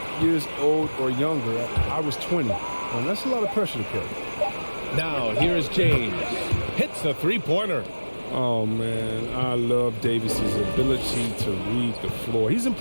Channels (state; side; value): inverted; both; correlation -1.00